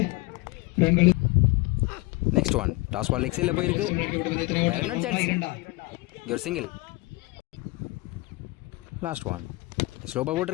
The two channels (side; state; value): right; quieter; 23.2 dB